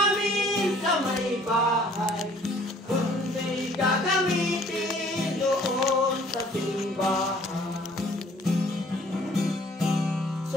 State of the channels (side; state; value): both; normal; correlation 0.57